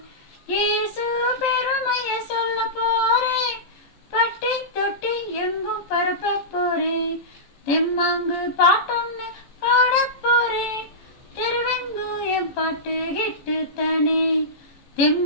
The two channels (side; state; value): right; late; 15 ms